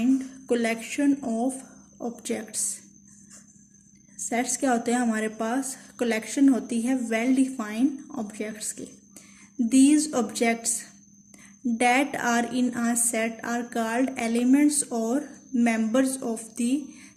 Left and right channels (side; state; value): both; identical; correlation 1.00